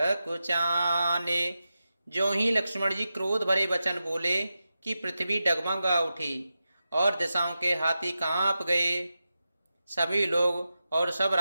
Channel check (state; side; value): inverted; both; correlation -0.91